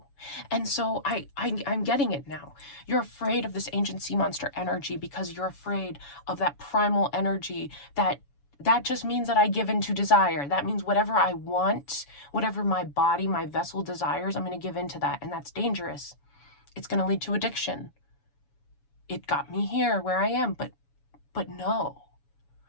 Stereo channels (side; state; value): right; late; 7.1 ms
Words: And so I'm getting it now. You're afraid of this ancient sea monster energy because you're afraid of that primal energy that just means that I give in to desire. That means whatever I want, whatever my body, my vessel desires, I'm going to give in to that. And that's dangerous. It's going to lead to addiction. It got me here where I am, but no.